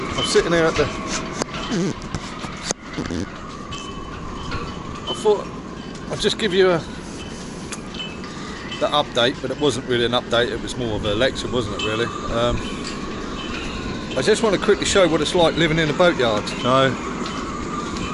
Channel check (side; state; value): both; identical; correlation 1.00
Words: I'm sitting here at the. I thought I'd just give you the update, but it wasn't really an update. It was more of a lecture, wasn't it? Really. I just want to quickly show what it's like living in a boatyard. So